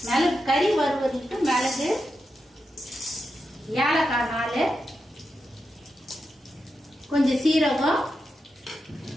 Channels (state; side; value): normal; both; correlation 0.88